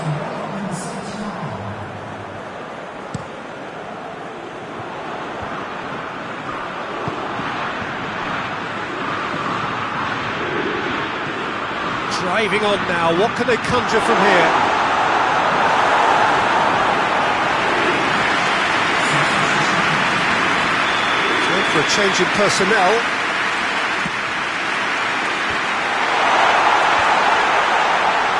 Driving on now. What can they conjure from here? For a change in personnel.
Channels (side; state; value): both; identical; correlation 1.00